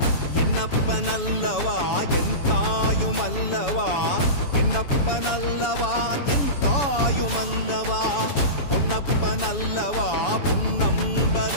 என்னப்பனல்லவா என் தாயுமல்லவா என்னப்பனல்லவா என் தாயுமல்லவா பொன்னப்பனல்லவா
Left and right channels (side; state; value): right; late; 7.1 ms